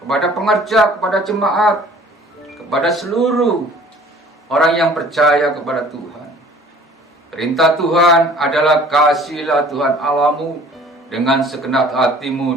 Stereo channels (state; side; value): normal; both; correlation 0.51